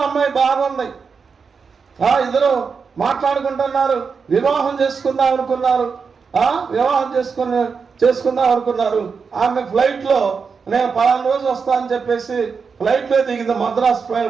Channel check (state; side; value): quieter; left; 5.5 dB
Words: అమ్మాయి బాగుంది. ఇద్దరు మాట్లాడుకుంటున్నారు, వివాహం చేసుకుందాం అనుకున్నారు. ఆమె ఫ్లైట్లో నేను 10 రోజు వస్తా అని చెప్పేసి ఫ్లైట్లో దిగింది, మద్రాస్